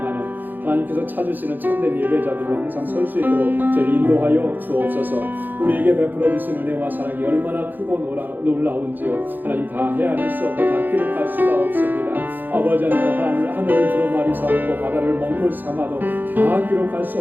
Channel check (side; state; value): left; late; 0.087 ms